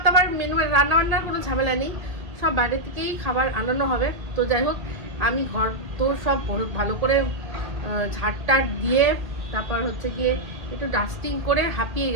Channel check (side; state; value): left; late; 1.9 ms